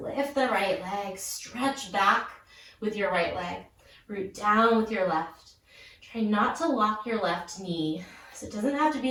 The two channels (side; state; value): both; identical; correlation 1.00